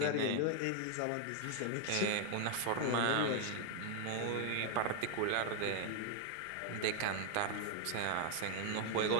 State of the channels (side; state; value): both; different; correlation 0.00